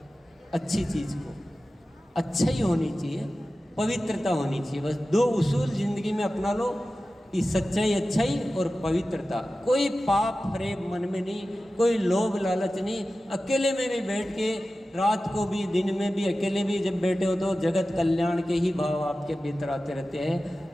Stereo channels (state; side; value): normal; both; correlation 0.95